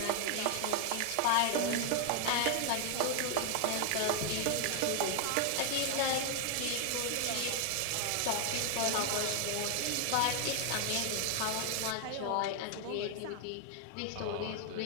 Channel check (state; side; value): different; both; correlation 0.00